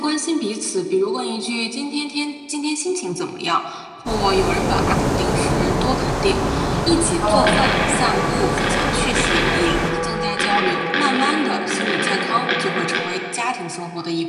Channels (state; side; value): identical; both; correlation 1.00